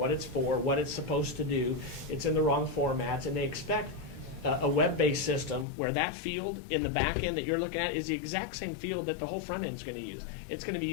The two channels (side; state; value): right; drops out; at 5.7 s